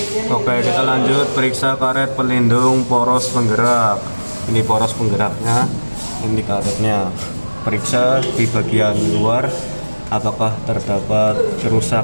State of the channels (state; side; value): inverted; both; correlation -1.00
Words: Oke, kita lanjut periksa karet pelindung poros penggerak. Ini poros penggeraknya, ini karetnya. Periksa di bagian luar apakah terdapat